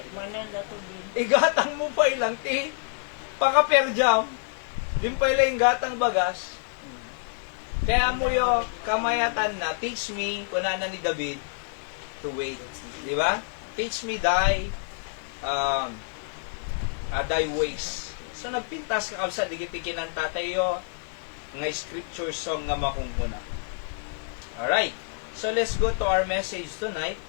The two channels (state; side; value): silent; right; digital silence